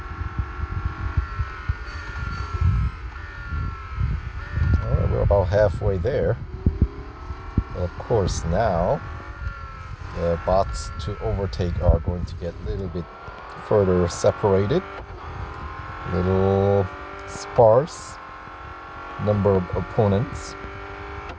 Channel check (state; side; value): identical; both; correlation 1.00